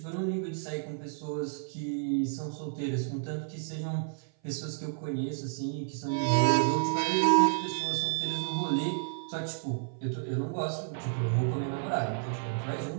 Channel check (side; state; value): left; silent; 56 dB below the other